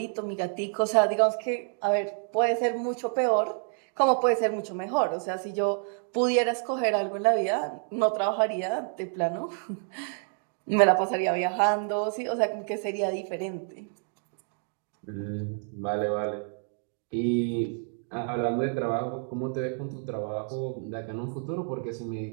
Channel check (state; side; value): silent; left; 59 dB below the other